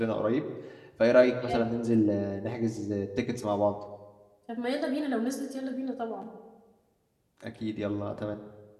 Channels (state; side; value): identical; both; correlation 1.00